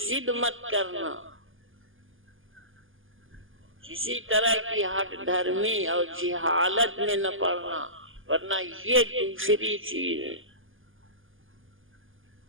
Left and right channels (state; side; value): late; left; 0.58 ms